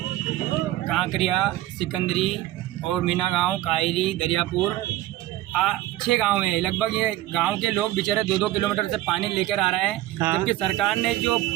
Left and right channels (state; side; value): quieter; left; 15.4 dB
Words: कांकरिया, सिकंदरी और मीना गांव, कायरी, दरियापुर, 6 गांव हैं। लगभग ये गांव के लोग बेचारे 2-2 किलोमीटर से पानी लेकर आ रहे हैं। हाँ। जबकि सरकार ने जो